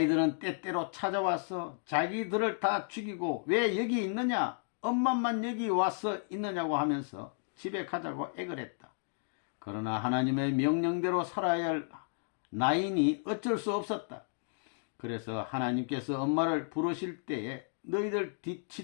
때때로 찾아와서 자기들을 다 죽이고 왜 여기 있느냐, 엄마만 여기 와서 있느냐고 하면서 집에 가자고 애걸 했다. 그러나 하나님의 명령대로 살아야 할 나이니 어쩔 수 없었다. 그래서 하나님께서 엄마를 부르실 때에 너희들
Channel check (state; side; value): silent; right; digital silence